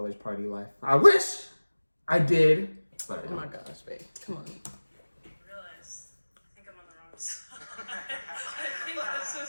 party life. I wish I did. But oh my gosh, babe. Come on. I realize I think I'm on the wrong side. I think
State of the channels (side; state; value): both; inverted; correlation -1.00